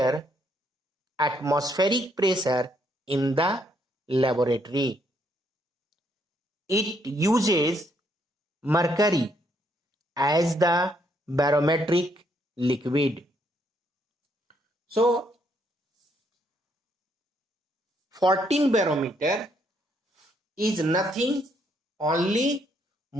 atmospheric pressure in the laboratory. It uses mercury as the barometric liquid. So, 14 barometer is nothing, only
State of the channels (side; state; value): both; normal; correlation 0.72